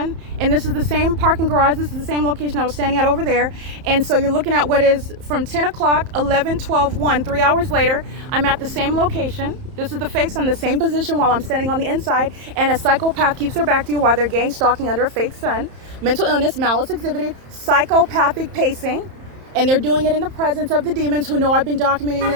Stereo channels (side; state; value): left; late; 31 ms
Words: And this is the same parking garage. This is the same location I was standing at over there. And so you're looking at what is from 10 o'clock, 11, 12, 1, 3 hours later, I'm at the same location. This is the fake sun, the same position while I'm standing on the inside. And a psychopath keeps their back to you while they're gang stalking under a fake sun. Mental illness, malice exhibited, psychopathic pacing. And they're doing it in the presence of the demons who know I've been documenting